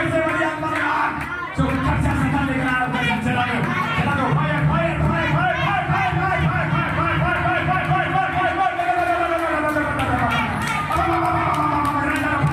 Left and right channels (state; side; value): identical; both; correlation 1.00